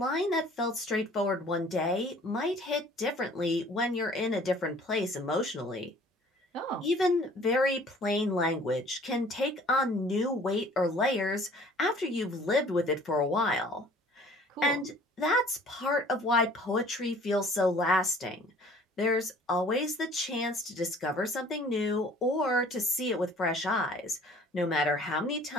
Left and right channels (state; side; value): normal; both; correlation 0.52